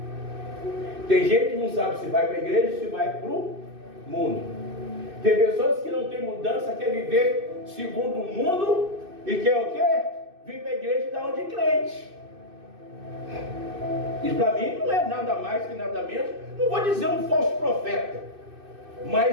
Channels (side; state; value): left; late; 2.6 ms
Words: Tem gente que não sabe se vai para a igreja ou se vai para o mundo. Tem pessoas que não têm mudança, quer viver segundo o mundo e quer o quê? Vir para a igreja e dar onde crente. Isso para mim não é nada mais que nada menos, não vou dizer um falso profeta,